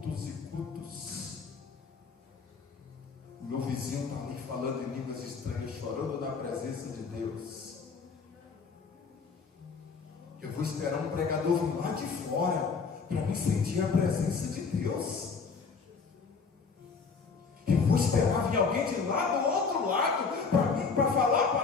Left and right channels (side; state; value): right; quieter; 5.1 dB